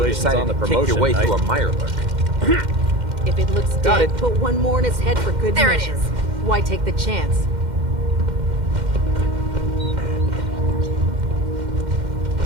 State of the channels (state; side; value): late; left; 2.1 ms